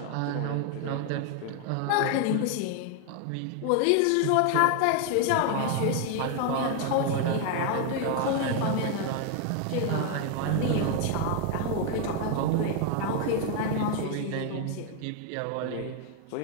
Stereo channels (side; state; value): both; different; correlation 0.01